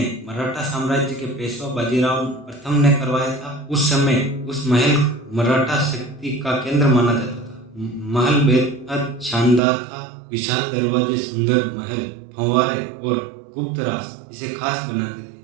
मराठा साम्राज्य के पेशवा बाजीराव प्रथम ने करवाया था। उस समय उस महल मराठा शक्ति का केंद्र माना जाता था। महल बेहद शानदार था। विशाल दरवाजे, सुंदर महल, फंवारे और गुप्त रास्ते इसे खास बनाते थे।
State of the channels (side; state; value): left; drops out; at 9.6 s